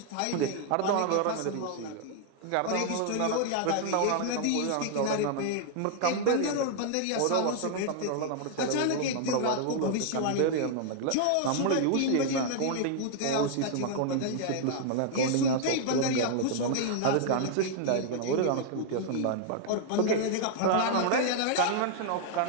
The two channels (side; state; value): both; different; correlation -0.01